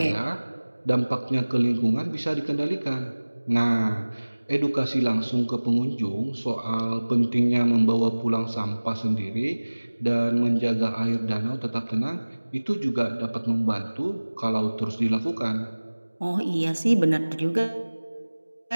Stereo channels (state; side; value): inverted; both; correlation -1.00